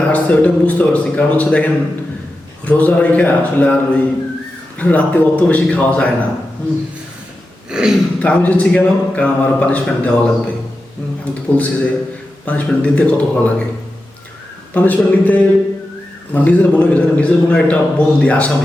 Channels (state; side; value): normal; both; correlation 0.91